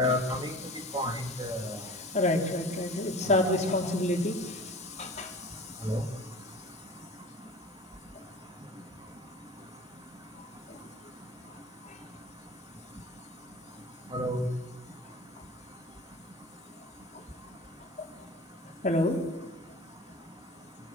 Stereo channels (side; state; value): both; normal; correlation 0.38